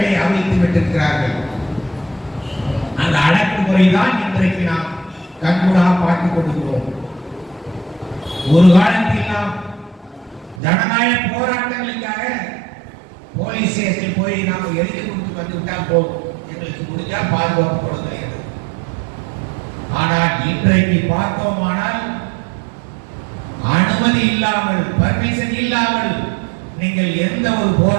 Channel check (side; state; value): left; drops out; at 10.6 s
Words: அவிழ்த்து விட்டிருக்கிறார்கள். அந்த அடக்குமுறை தான் இன்றைக்கு நாம் கண்கூடாக பார்த்துக் கொண்டிருக்கிறோம். ஒரு காலத்தில் நாம் ஜனநாயக போராட்டங்களுக்காக போலீஸ் ஸ்டேஷன் போய் நாம் எழுதி கொடுத்து வந்து விட்டால் போதும், எங்களுக்கு முடிஞ்சா பாதுகாப்பு கொடுக்கிறது. ஆனால் இன்றைக்கு பார்த்தோமானால் அனுமதி இல்லாமல், பர்மிஷன் இல்லாமல் நீங்கள் எந்த ஒரு